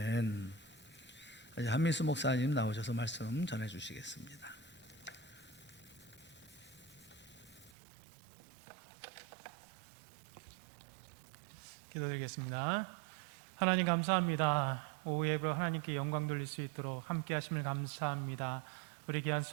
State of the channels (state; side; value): drops out; left; at 7.7 s